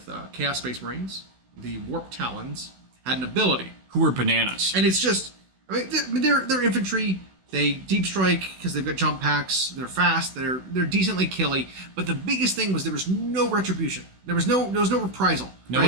Chaos Space Marines. The Warp Talons had an ability. Who were bananas. And it's just, they're infantry. They deep strike because they've got jump packs. They're fast. They're decently killy. But the biggest thing was there was no retribution. There was no reprisal. No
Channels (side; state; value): left; late; 16 ms